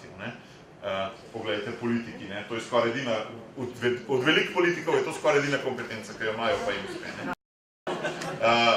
Poglejte, politiki, to je skoraj edina, od velikih politikov je to skoraj edina kompetenca, ki jo imajo, pa jim uspe.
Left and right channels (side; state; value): both; identical; correlation 1.00